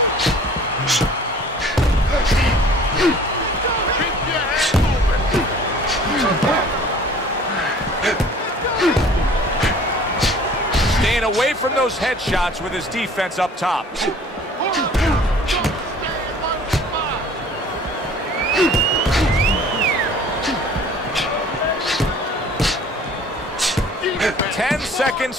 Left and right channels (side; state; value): both; normal; correlation 0.49